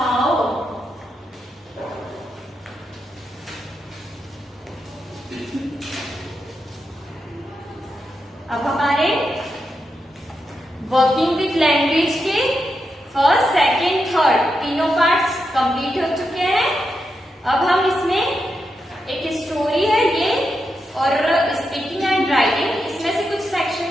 अब हमारे वर्किंग विथ लैंग्वेज के फर्स्ट, सेकेंड, थर्ड तीनों पार्ट्स कंप्लीट हो चुके हैं। अब हम इसमें एक स्टोरी है ये और स्पीकिंग एंड राइटिंग, इसमें से कुछ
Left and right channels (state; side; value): normal; both; correlation 0.85